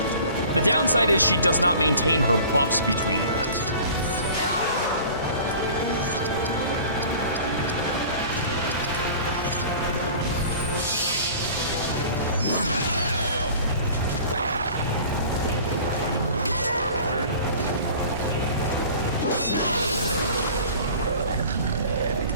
The downside is she does not maintain her buffs between that.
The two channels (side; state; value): both; inverted; correlation -0.44